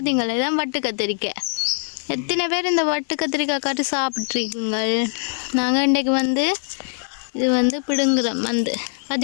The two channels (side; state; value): right; silent; digital silence